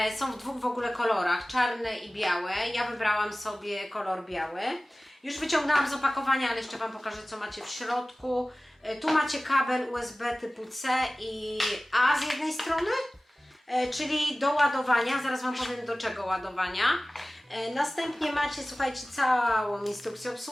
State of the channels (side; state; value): both; normal; correlation 0.98